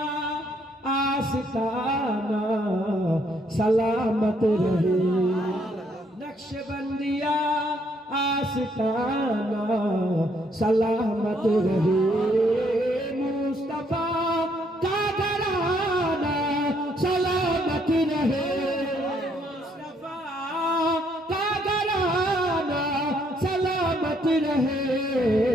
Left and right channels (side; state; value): both; normal; correlation 0.70